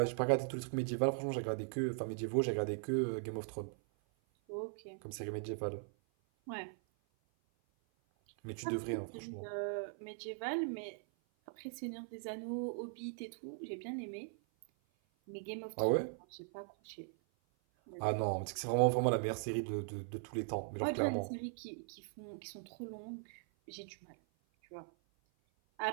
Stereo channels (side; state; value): left; silent; 51 dB below the other